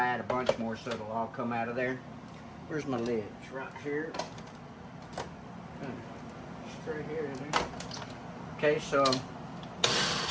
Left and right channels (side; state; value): both; identical; correlation 1.00